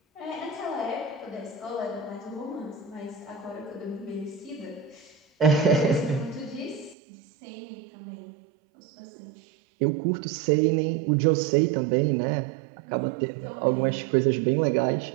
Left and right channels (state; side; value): drops out; left; at 7.0 s